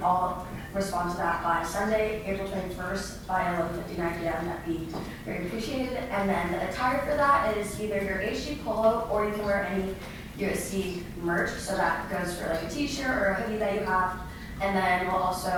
all respond to that by Sunday, April 21st, by 11:59 p.m., that'd be very appreciated. And then the attire for that is either your ASG polo, or you can wear any USC merch, so that goes for like a t-shirt or a hoodie that you have. And then we'll also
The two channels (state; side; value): identical; both; correlation 1.00